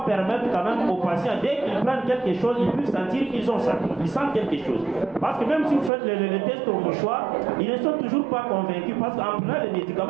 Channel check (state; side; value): drops out; left; at 5.9 s